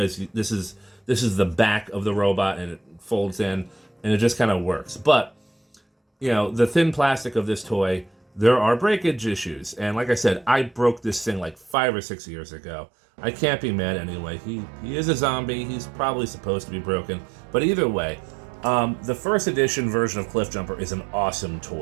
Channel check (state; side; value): drops out; left; at 11.8 s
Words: this is the back of the robot, and it folds in, and it just kind of works. But, you know, the thin plastic of this toy, there are breakage issues. And like I said, I broke this thing like 5 or 6 years ago. I can't be mad anyway. He is a zombie. He's probably supposed to be broken. But either way, the first edition version of Cliffjumper is an awesome